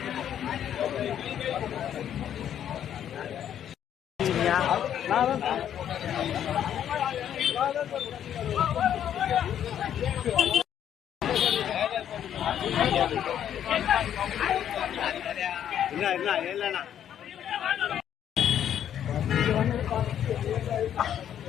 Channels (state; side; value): quieter; right; 9.9 dB